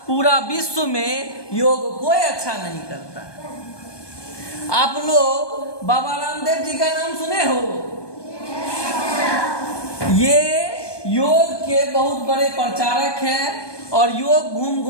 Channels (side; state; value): right; late; 1.2 ms